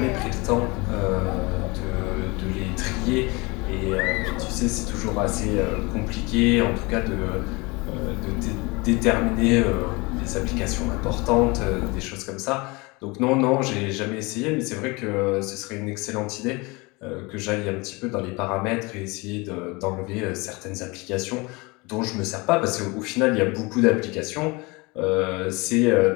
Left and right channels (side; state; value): right; quieter; 25.7 dB